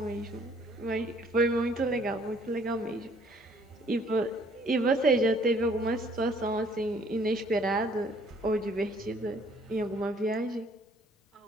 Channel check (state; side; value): normal; both; correlation 0.60